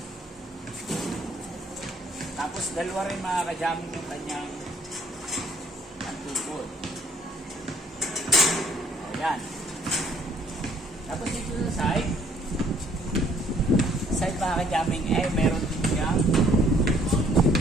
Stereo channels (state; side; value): normal; both; correlation 0.61